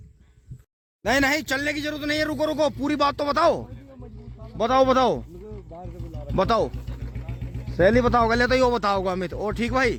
नहीं चलने की जरूरत नहीं है, रुको पूरी बात तो बताओ। सहेली बताओगे ले तो यो बताओगे अमित। और ठीक भाई,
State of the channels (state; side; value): identical; both; correlation 1.00